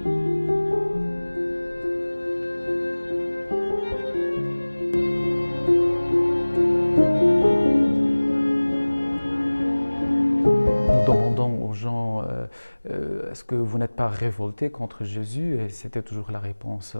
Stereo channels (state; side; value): inverted; both; correlation -1.00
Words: Nous demandons aux gens, est-ce que vous n'êtes pas révoltés contre Jésus? Et c'était toujours la réponse,